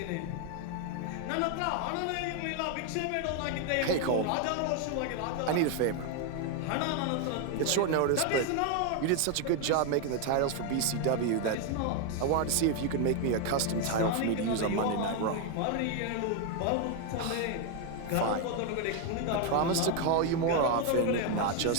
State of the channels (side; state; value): both; different; correlation 0.01